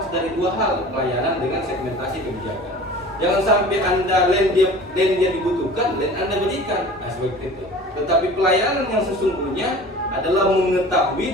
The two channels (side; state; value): both; normal; correlation 0.42